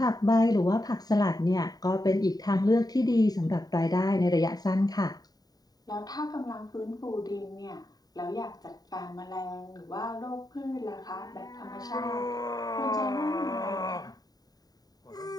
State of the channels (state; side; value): late; right; 0.18 ms